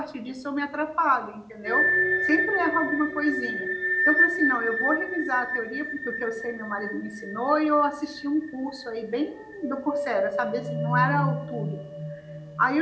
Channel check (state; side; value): identical; both; correlation 1.00